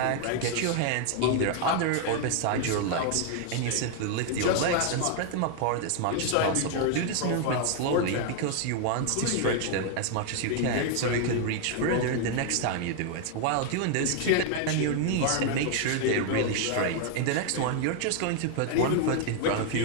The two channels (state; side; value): different; both; correlation 0.00